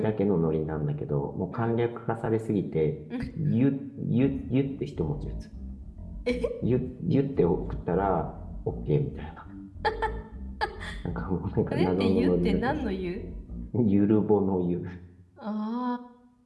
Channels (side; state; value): both; identical; correlation 1.00